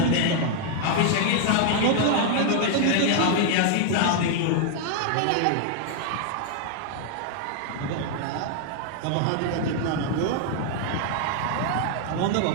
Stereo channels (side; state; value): both; different; correlation 0.00